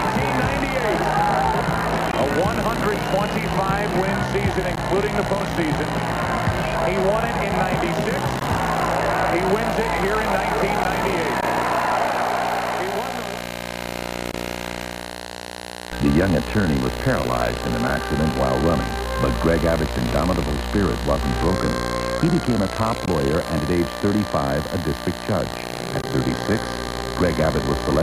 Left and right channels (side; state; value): both; identical; correlation 1.00